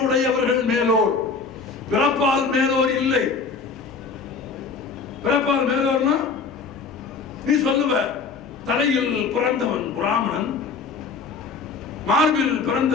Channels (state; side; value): quieter; right; 4.8 dB